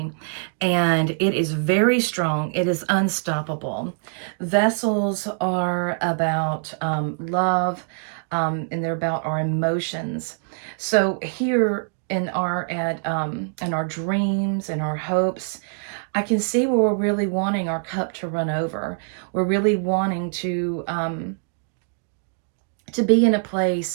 and it is very strong. It is unstoppable. Vessels are about love, and they're about our emotions. So here in our dreams and our hopes, I can see where we're really wanting our cup to run over. We're really wanting to be in a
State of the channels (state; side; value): silent; left; digital silence